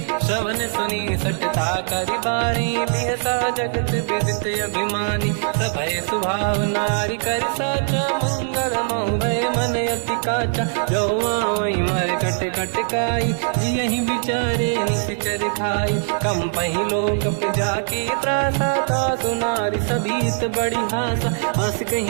श्रवण सुनी सटता करि बारी बिहसा जगत विदित अभिमानी सभय स्वभाव नारी कर साचा मंगल मऊ भय मन अति काचा जो आवई मर कट कट काई जियहि विचारे निश्चर खाई कम पही लोक जाकी त्रासा तासु नारी सभीत बड़ी हासा, हंस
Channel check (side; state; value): left; silent; 65 dB below the other